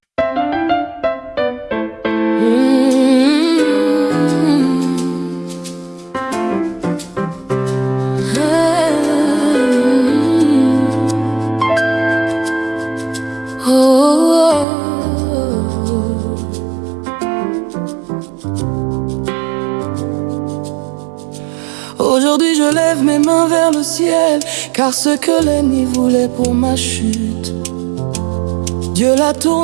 Aujourd'hui je lève mes mains vers le ciel, car ce que l'ennemi voulait pour ma chute, Dieu l'a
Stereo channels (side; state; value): left; drops out; at 14.7 s